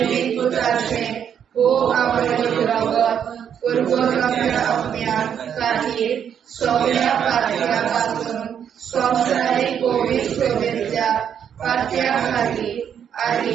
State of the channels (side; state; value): left; quieter; 8.5 dB